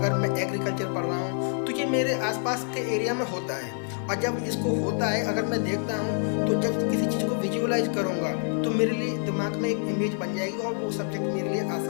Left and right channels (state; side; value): silent; right; 60 dB below the other